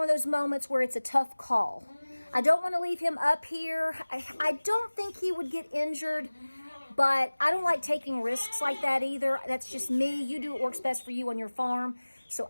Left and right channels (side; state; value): both; inverted; correlation -1.00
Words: of those moments where it's a tough call. I don't want to leave him up here. I don't think he would get injured, but I don't like taking risks like that either. That's just me. You do what works best for you on your farm. So